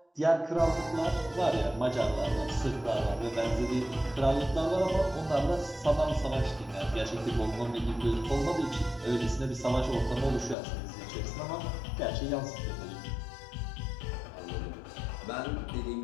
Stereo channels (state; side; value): drops out; right; at 10.6 s